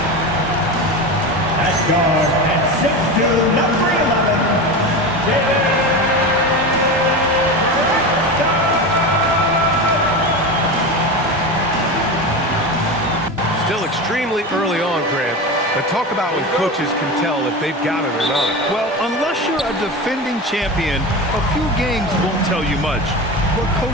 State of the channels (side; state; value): both; normal; correlation 0.24